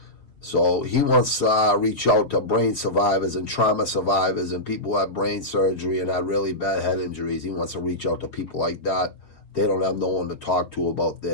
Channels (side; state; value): right; late; 5.0 ms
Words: So he wants to reach out to brain survivors and trauma survivors and people who have brain surgery and had really bad head injuries. He wants to reach out to people like that. They don't have no one to talk to about